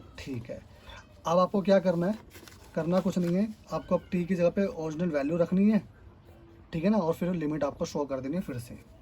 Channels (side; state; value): both; identical; correlation 1.00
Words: ठीक है। अब आपको क्या करना है, करना कुछ नहीं है, आपको अब टी की जगह पे ओरिजिनल वैल्यू रखनी है, ठीक है ना, और फिर लिमिट आपको शो कर देनी है फिर से।